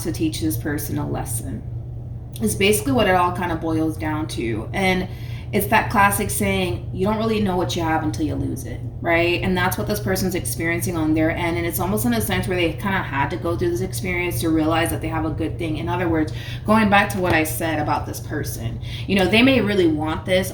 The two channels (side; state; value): both; identical; correlation 1.00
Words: to teach this person a lesson. It's basically what it all kind of boils down to. And it's that classic saying, you don't really know what you have until you lose it, right? And that's what this person's experiencing on their end. And it's almost in a sense where they kind of had to go through this experience to realize that they have a good thing. In other words, going back to what I said about this person, you know, they may really want this,